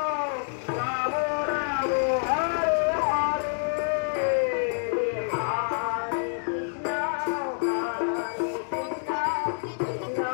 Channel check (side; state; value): right; silent; digital silence